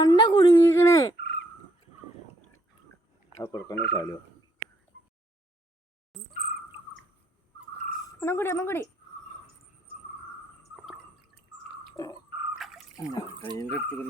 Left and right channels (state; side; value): normal; both; correlation 0.72